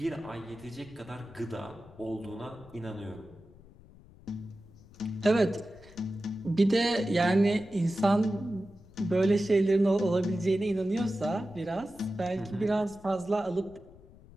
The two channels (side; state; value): left; noise; rumble, 22 dB below the sound